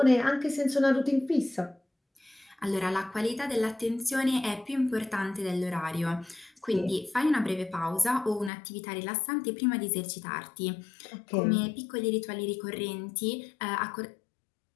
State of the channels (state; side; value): drops out; right; at 8.5 s